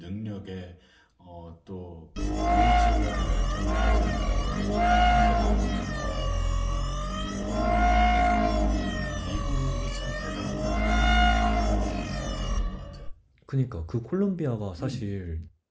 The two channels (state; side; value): identical; both; correlation 1.00